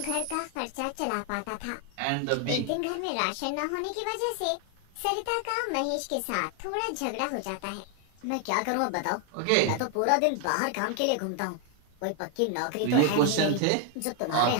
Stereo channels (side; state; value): both; different; correlation 0.01